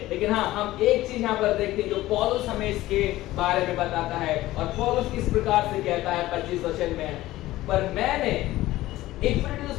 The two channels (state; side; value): quieter; right; 16.5 dB